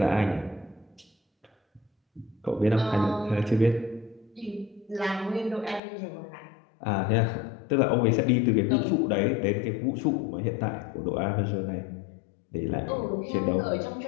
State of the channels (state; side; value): drops out; right; at 5.8 s